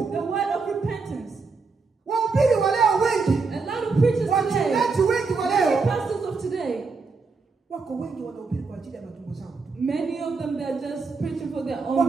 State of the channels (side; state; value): left; quieter; 4.4 dB